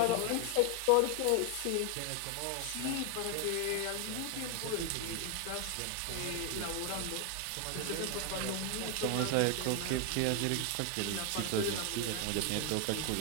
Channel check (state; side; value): different; both; correlation 0.01